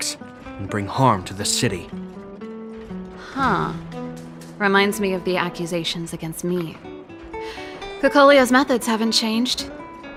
and bring harm to the city. Huh. Reminds me of the accusations against me. Cocolia's methods haven't changed.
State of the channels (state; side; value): identical; both; correlation 1.00